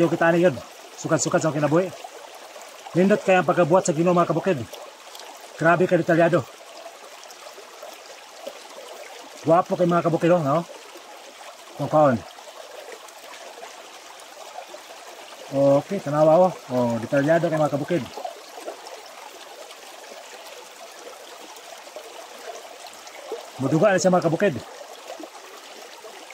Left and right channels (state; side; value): identical; both; correlation 1.00